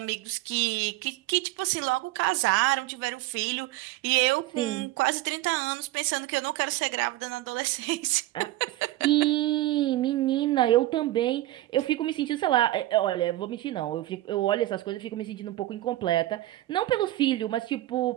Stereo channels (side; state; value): left; quieter; 16.4 dB